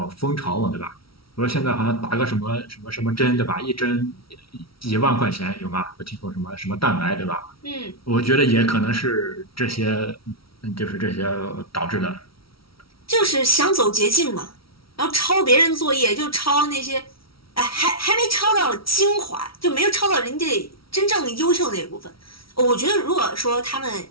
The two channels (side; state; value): right; late; 0.75 ms